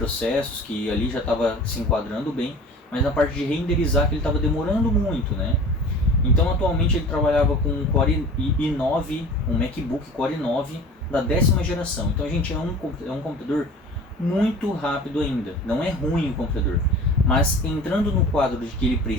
que ali já estava se enquadrando bem, mas na parte de renderizar, que ele estava demorando muito, né? Então atualmente ele trabalhava com um Core i9, um MacBook Core i9 da 10ª geração. Então, gente, é um computador muito rápido ainda. Não é ruim o computador, mas entrando no quadro de que ele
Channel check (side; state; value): both; normal; correlation 0.41